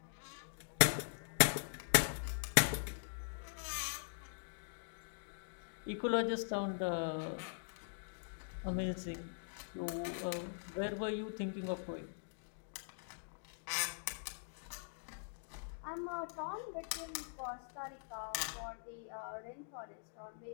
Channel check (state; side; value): silent; right; digital silence